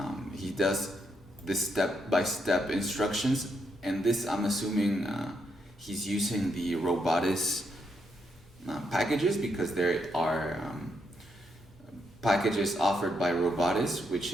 He does this step-by-step instructions, and this I'm assuming he's using the Robotics packages, because there are packages offered by Robotics,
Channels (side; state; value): left; noise; hum, 30 dB below the sound